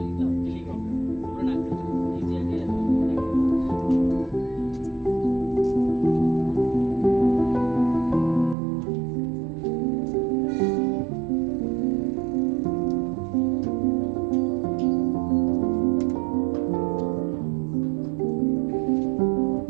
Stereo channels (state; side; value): drops out; left; at 8.6 s